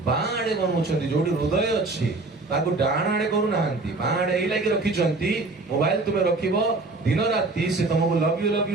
बाड़े बनउछंती जोडी हृदय अछि ताको डाण आड़े करू नाहंती, बाड़े एई लागि रखिचंती। मोबाइल तुमे रखिबो दिन राती से तुमको लव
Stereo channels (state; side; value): quieter; left; 3.4 dB